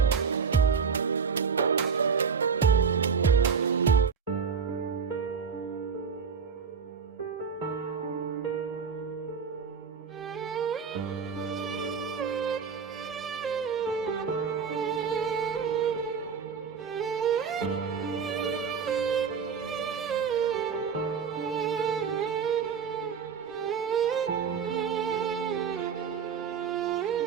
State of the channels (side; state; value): left; quieter; 6.2 dB